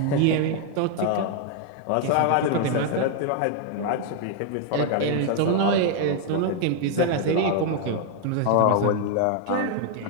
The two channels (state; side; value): different; both; correlation 0.00